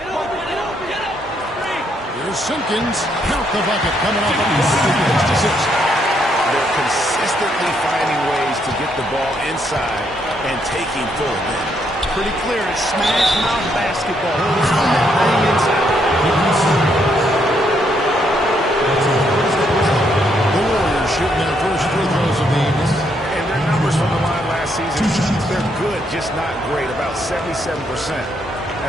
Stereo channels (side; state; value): both; normal; correlation 0.74